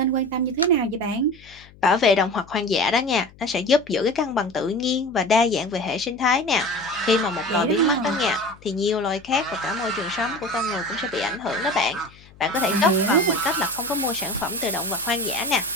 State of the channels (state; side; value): noise; left; hum, 24 dB below the sound